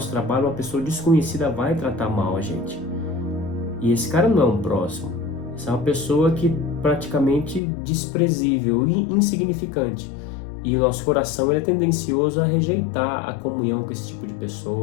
trabalho, uma pessoa desconhecida vai tratar mal a gente. E esse cara não é um próximo. Essa é uma pessoa que praticamente desprezível e insignificante. E o nosso coração ele é tendencioso a rejeitar a comunhão com esse tipo de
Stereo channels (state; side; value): drops out; right; at 7.6 s